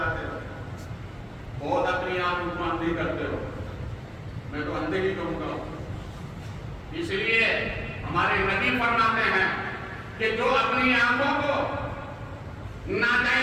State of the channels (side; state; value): both; identical; correlation 1.00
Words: ہو, بہت اپنی آنکھ کو اندھی کرتے ہو. میں تو اندھے ہی کہوں گا. اس لیے ہمارے نبی فرماتے ہیں کہ جو اپنی آنکھوں کو